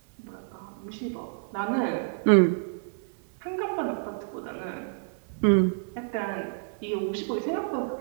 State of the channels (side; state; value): left; silent; 59 dB below the other